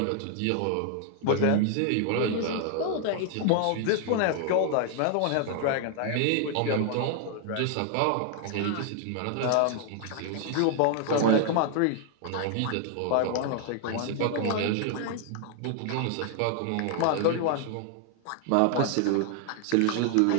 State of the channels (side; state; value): both; different; correlation 0.00